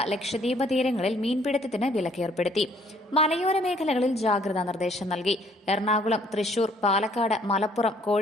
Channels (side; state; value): both; normal; correlation 0.62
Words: ലക്ഷദ്വീപ് തീരങ്ങളിൽ മീൻപിടുത്തത്തിന് വിലക്കേർപ്പെടുത്തി. മലയോര മേഖലകളിൽ ജാഗ്രതാ നിർദ്ദേശം നൽകി. എറണാകുളം, തൃശൂർ, പാലക്കാട്, മലപ്പുറം,